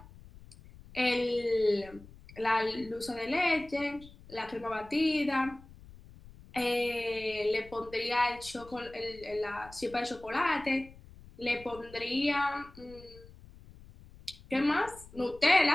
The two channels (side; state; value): left; noise; rumble, 20 dB below the sound